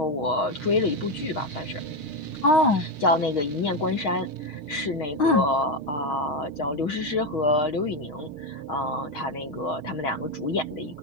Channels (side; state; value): right; late; 6.4 ms